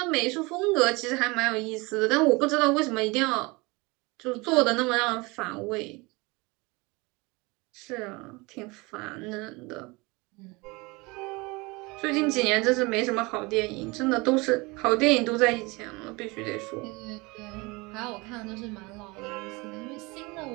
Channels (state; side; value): quieter; left; 25.2 dB